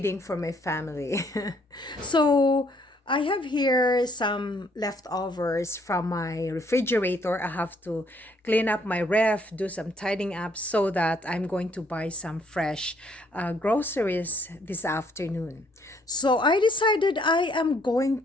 for my family. So I have here some leftovers from my refrigerator. I have to clean up my ref, do some tidying up so that I'm going to buy some fresh groceries this afternoon. So I decided I am going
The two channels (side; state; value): both; normal; correlation 0.67